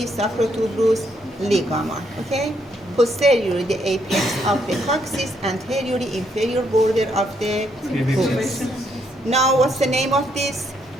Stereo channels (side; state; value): both; normal; correlation 0.74